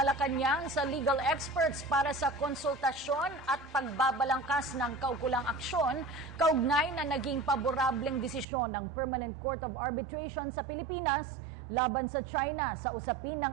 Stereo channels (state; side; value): drops out; left; at 8.5 s